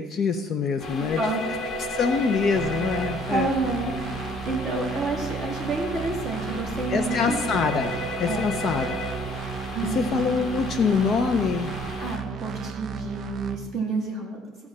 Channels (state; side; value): normal; both; correlation 0.60